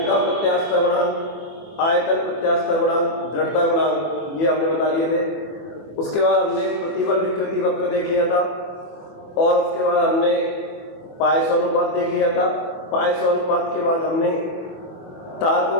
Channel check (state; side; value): late; right; 25 ms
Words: का प्रत्यास्थता गुणांक, आयतन प्रत्यास्थता गुणांक, दृढ़ता गुणांक, ये हमने बता लिए थे। उसके बाद हमने प्रतिबल विकृति वक्र देख लिया था और उसके बाद हमने पायसो अनुपात देख लिया था। पायसो अनुपात के बाद हमने तार को